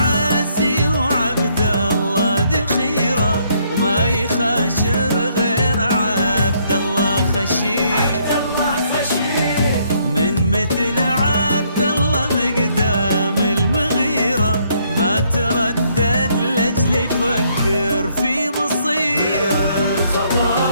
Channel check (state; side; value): inverted; both; correlation -0.69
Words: وعبد الله ذخيرة وما يخاشر غير عبد الله خشير من مثل عبد الله مقدام المغيرة ما تردد لأجل يفكر في مصير